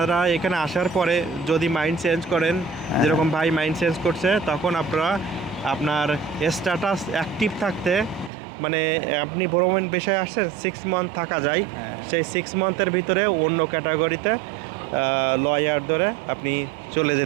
এখানে আসার পরে যদি মাইন্ড চেঞ্জ করেন, যেরকম ভাই মাইন্ড চেঞ্জ করছে, তখন আপনারা আপনার স্ট্যাটাস অ্যাক্টিভ থাকতে, মানে আপনি ভ্রমণ বিষয়ে আসছেন 6 মান্থ থাকা যায়, হ্যাঁ। সেই 6 মান্থের ভিতরে অন্য ক্যাটাগরিতে লয়ার ধরে আপনি চলে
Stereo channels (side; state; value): left; drops out; at 8.3 s